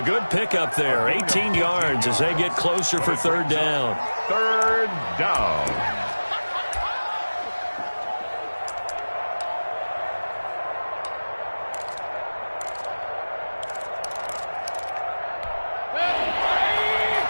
good pickup there. 18 yards as they get closer for 3rd down. 3rd down.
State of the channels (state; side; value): inverted; both; correlation -1.00